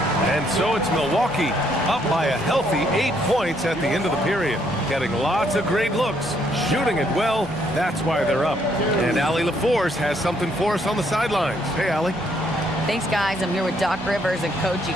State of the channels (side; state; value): right; noise; hum, 22 dB below the sound